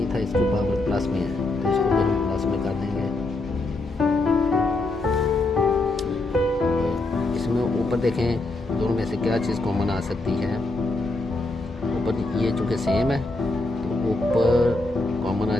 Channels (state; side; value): quieter; right; 3.0 dB